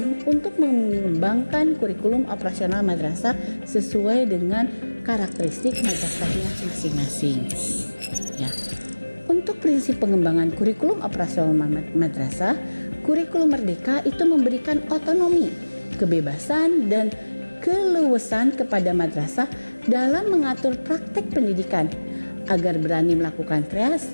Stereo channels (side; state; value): both; inverted; correlation -1.00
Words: untuk mengembangkan kurikulum operasional madrasah sesuai dengan karakteristik madrasahnya masing-masing. Ya. Untuk prinsip pengembangan kurikulum operasional madrasah, kurikulum merdeka itu memberikan otonomi, kebebasan, dan keleluasan kepada madrasah dalam mengatur praktek pendidikan agar berani melakukan